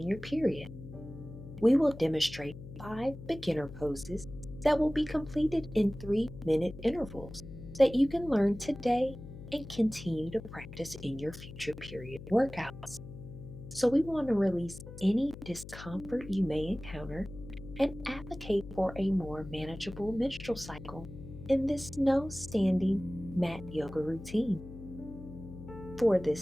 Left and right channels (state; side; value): noise; left; hum, 13 dB below the sound